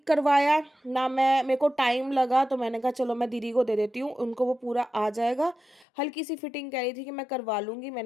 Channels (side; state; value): right; drops out; at 5.9 s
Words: करवाया, ना मेरे को टाइम लगा। तो मैंने कहा चलो मैं दीदी को दे देती हूँ, उनको वो पूरा आ जाएगा। हल्की सी फिटिंग कह रही थी कि मैं करवा लूँगी,